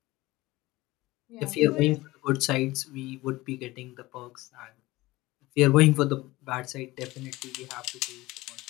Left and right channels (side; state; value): right; quieter; 19.5 dB